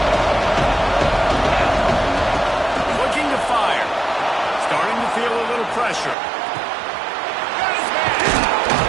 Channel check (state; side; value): drops out; left; at 6.2 s